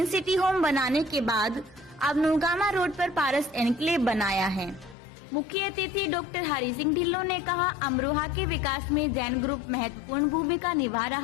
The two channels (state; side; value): drops out; right; at 5.0 s